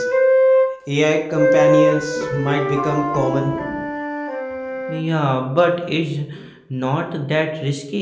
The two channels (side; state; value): both; identical; correlation 1.00